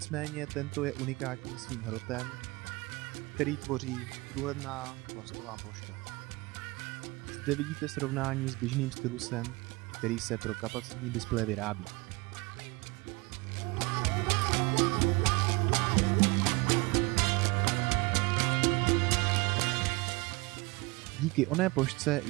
tento je unikátní svým hrotem, který tvoří průhledná plastová ploška. Zde vidíte srovnání s běžným stylusem, který se pro kapacitní displeje vyrábí. Díky oné plošce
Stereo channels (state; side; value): quieter; left; 24.7 dB